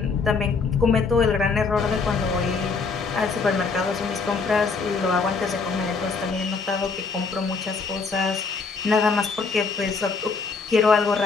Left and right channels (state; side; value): quieter; right; 4.6 dB